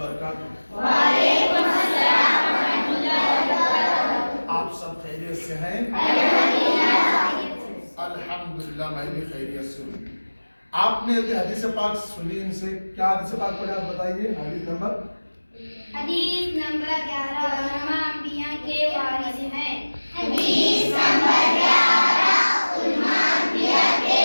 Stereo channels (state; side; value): inverted; both; correlation -1.00